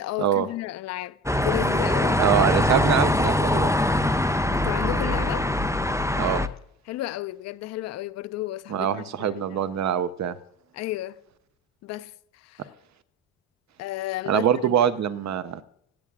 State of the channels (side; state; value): both; normal; correlation 0.37